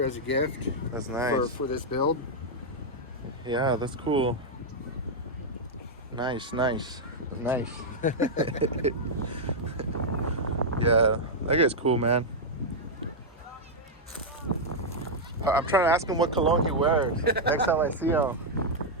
as a gift. That's nice. For this build. Yeah, that's cool. Nice. Yeah, that guy's cool, man. I'm trying to ask him what cologne he wears next time I see him.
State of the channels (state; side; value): normal; both; correlation -0.03